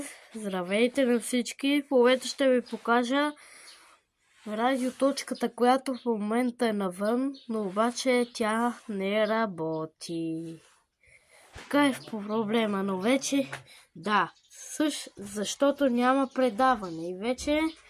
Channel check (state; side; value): identical; both; correlation 1.00